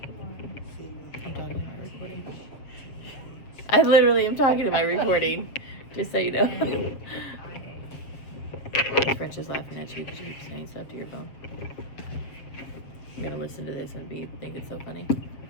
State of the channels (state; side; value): late; right; 7.3 ms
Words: I'm talking to my recording. I literally am talking to my recording, just so you know. French is laughing at you because you keep saying stuff to your phone. I'm gonna listen to this and think it's so funny.